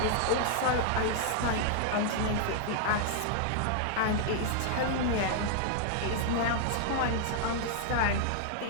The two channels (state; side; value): different; both; correlation 0.00